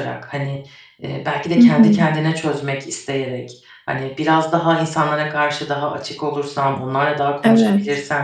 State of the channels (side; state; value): both; identical; correlation 1.00